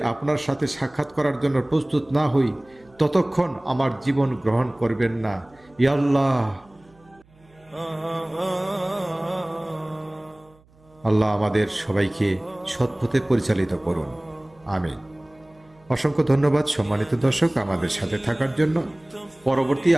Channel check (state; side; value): noise; right; hum, 30 dB below the sound